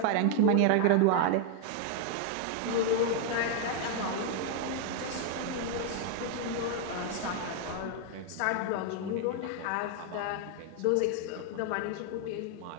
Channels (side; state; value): both; different; correlation 0.01